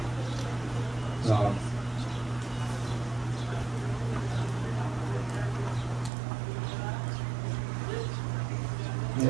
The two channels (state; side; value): drops out; left; at 6.1 s